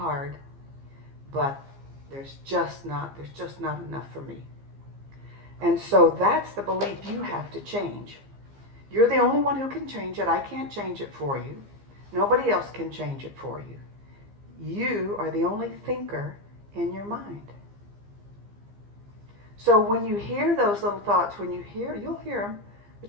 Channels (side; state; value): left; late; 15 ms